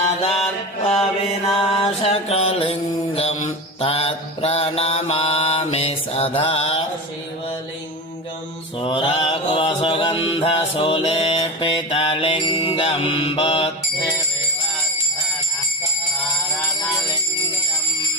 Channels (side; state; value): both; normal; correlation 0.24